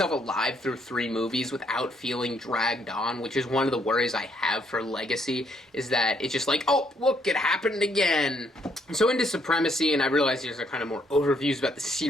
alive through 3 movies without feeling dragged on, which is one of the worries I have for Legacy, is that it's just like, oh, look, it happened again. So into Supremacy, and I realize these are kind of more overviews about the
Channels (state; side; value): normal; both; correlation 0.71